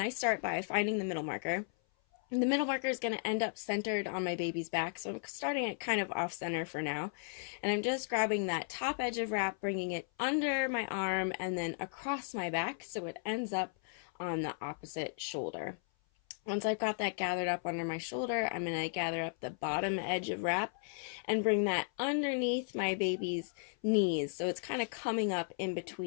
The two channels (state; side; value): silent; right; 54 dB below the other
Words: I start by finding the middle marker. And the middle marker is going to end up centered on my baby's back, so I'm starting it kind of off center for now. And I'm just grabbing that top edge of wrap, bringing it under my arm and then across my back so it ends up on the opposite shoulder. Once I've got that gathered up under my shoulder, I'm going to gather up the bottom edge of wrap and bring that underneath my baby's knees. So it's kind of coming up in